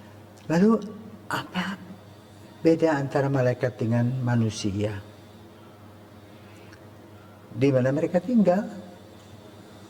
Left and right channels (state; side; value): identical; both; correlation 1.00